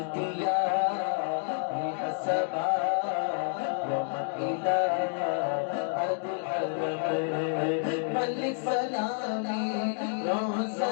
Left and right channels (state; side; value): silent; right; digital silence